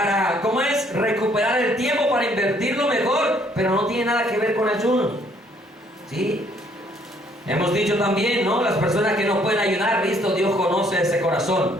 ¿cómo es? Recuperar el tiempo, para invertirlo mejor, pero no tiene nada que ver con ayuno. ¿Sí? Hemos dicho también, ¿no? Las personas que no pueden ayunar, listo, Dios conoce ese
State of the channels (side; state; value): both; normal; correlation 0.65